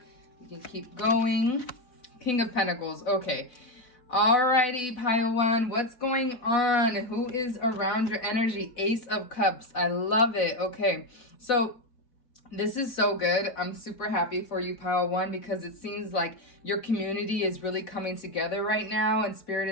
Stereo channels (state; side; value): late; right; 4.0 ms